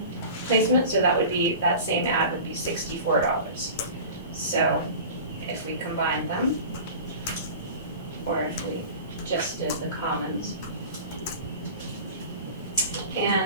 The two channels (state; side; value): inverted; both; correlation -0.37